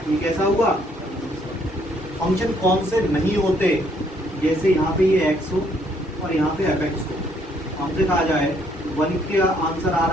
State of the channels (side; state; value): both; normal; correlation 0.67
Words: ये कैसा हुआ, फंक्शन कौन से नहीं होते, जैसे यहाँ पे ये x हो और यहाँ पे fx हो। हमसे कहा जाए 1 का आंसर आ